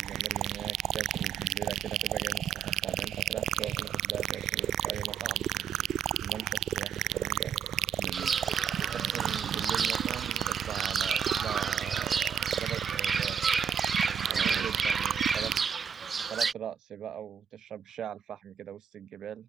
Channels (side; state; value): left; quieter; 8.1 dB